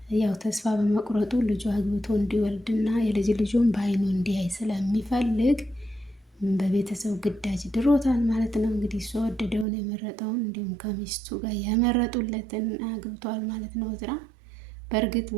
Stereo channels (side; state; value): left; drops out; at 9.7 s